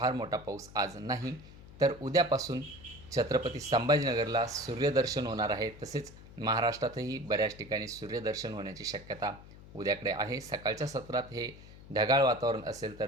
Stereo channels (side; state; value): left; noise; hum, 18 dB below the sound